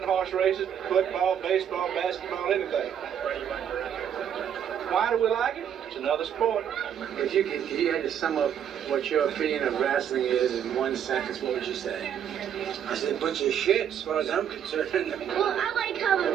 horse races, football, baseball, basketball, anything. Why do we like it? It's another sport. If you had to sum up what your opinion of wrestling is in one sentence, what would you say? I said, a bunch of shit, as far as I'm concerned. Well, I like how the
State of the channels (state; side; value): quieter; left; 9.1 dB